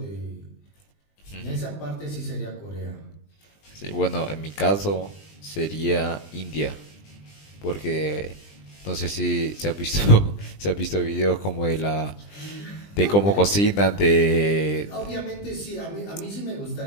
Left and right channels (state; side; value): late; right; 20 ms